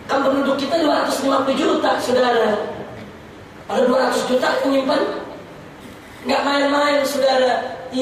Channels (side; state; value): both; identical; correlation 1.00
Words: kan penduduk kita 250 juta, saudara. Kalau 200 juta nyimpen, nggak main-main, saudara.